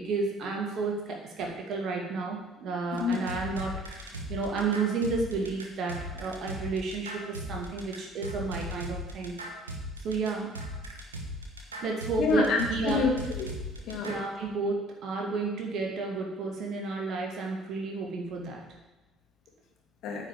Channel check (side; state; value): both; normal; correlation 0.51